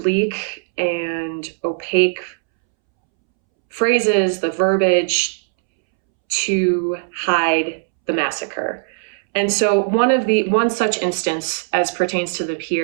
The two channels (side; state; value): left; silent; 66 dB below the other